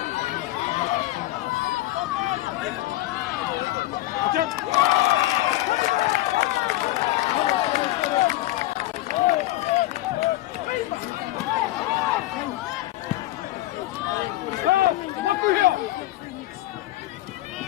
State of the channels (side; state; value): right; quieter; 16.6 dB